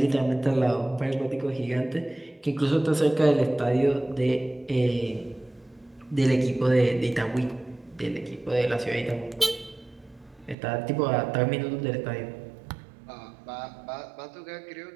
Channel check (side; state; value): left; drops out; at 10.6 s